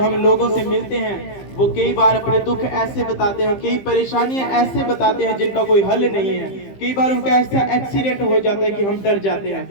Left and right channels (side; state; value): right; late; 15 ms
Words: लोगों से मिलते हैं, वो कई बार अपने दुख ऐसे बताते हैं, कई परेशानियां ऐसे बताते हैं जिनका कोई हल नहीं है। कई बार उनका ऐसा एक्सीडेंट हो जाता है कि हम डर जाते